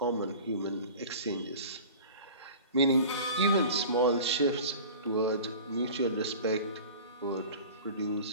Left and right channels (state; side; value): inverted; both; correlation -0.39